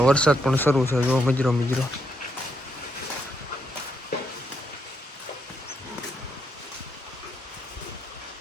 વરસાદ પણ શરૂ છે. જો મિજરો મિજરો.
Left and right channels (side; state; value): both; normal; correlation 0.78